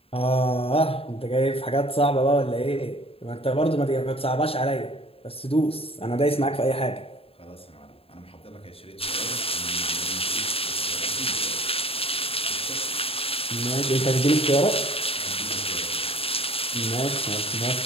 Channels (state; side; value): late; right; 0.27 ms